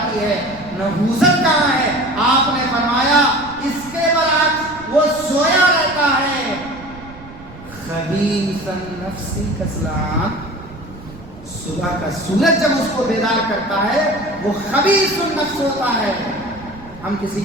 ہے۔ نحوست کہاں ہے؟ آپ نے فرمایا اس کے برعکس وہ سویا رہتا ہے، خبیث النفس کسلان، صبح کا سورج جب اس کو بیدار کرتا ہے وہ خبیث النفس ہوتا ہے۔ ہم کسی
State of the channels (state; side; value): noise; right; rumble, 18 dB below the sound